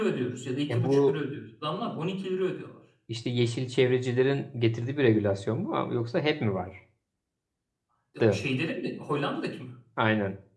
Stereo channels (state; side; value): identical; both; correlation 1.00